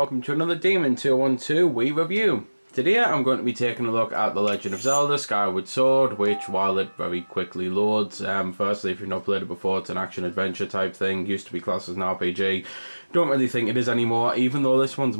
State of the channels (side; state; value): both; inverted; correlation -1.00